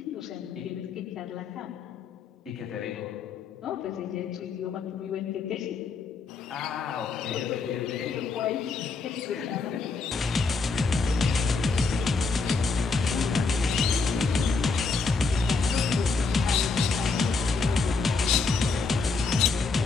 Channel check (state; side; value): quieter; right; 4.3 dB